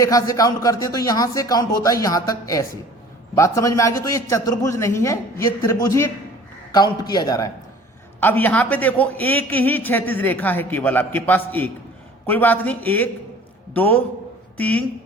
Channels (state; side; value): normal; both; correlation 0.48